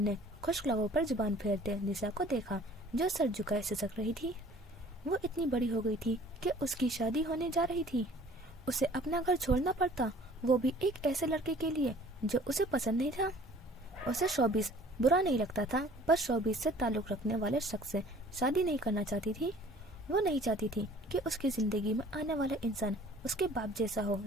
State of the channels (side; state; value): both; normal; correlation 0.51